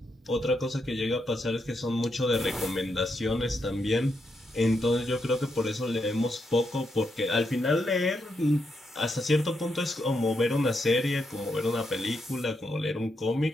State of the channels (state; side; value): normal; both; correlation 0.82